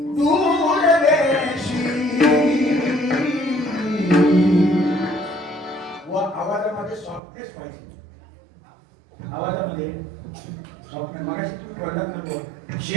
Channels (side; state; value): left; drops out; at 7.2 s